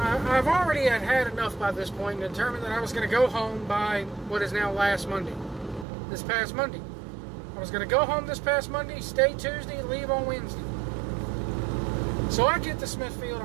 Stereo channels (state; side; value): drops out; left; at 5.9 s